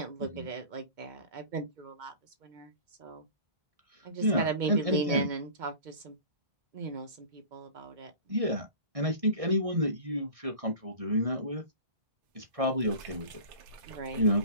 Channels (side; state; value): left; late; 2.2 ms